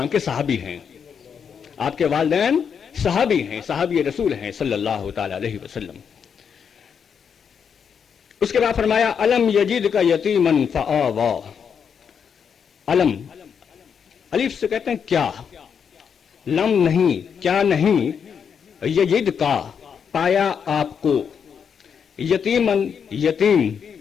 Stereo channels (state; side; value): quieter; right; 7.0 dB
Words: کے صحابی ہیں. آپ کے والدین صحابی ہیں، صحابی رسول ہیں صلی اللہ تعالی علیہ وسلم. اس کے بعد فرمایا الم یجدک یتیما فآوی. الم الف سے کہتے ہیں کیا، لم نہیں، کیا نہیں، یجد کا پایا آپ کو، یتیمن یتیم،